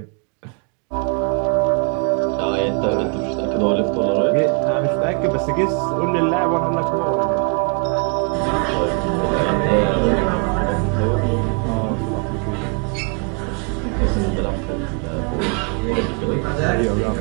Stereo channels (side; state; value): left; quieter; 36.9 dB